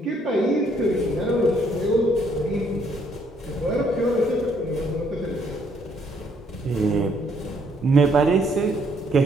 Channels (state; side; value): normal; both; correlation 0.68